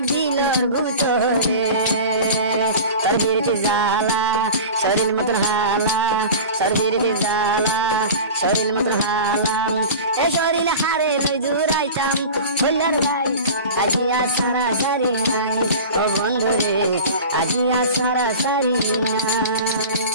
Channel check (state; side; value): inverted; both; correlation -0.34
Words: দিলর গুতরে সরবিরতি জালা শরীর মতন হালা সরবিরতি জালা শরীর মতন হালা এ শরীর হারে লই জুড়াইতাম হইলার ভাই আজিয়া সারা সারি নাই ও বন্ধু রে আজিয়া সারা সারি